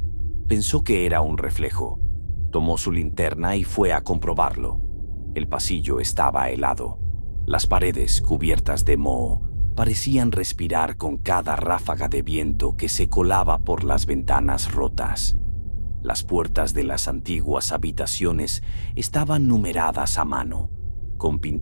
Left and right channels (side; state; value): both; inverted; correlation -1.00